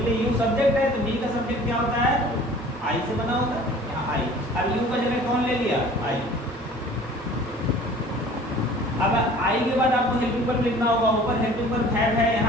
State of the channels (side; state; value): both; normal; correlation 0.47